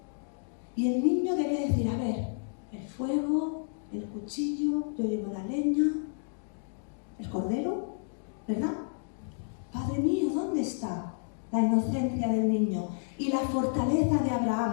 Y el niño debía decir, a ver, el fuego, el cuchillo, yo llevo la leña, el cordero, ¿verdad? Padre mío, ¿dónde está la inocencia del niño? Y la fortaleza de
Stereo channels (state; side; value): silent; right; digital silence